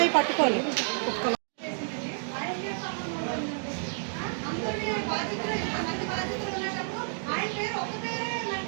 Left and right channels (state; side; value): silent; left; digital silence